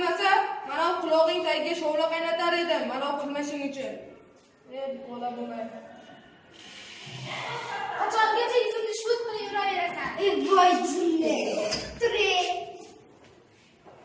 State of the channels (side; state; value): both; identical; correlation 1.00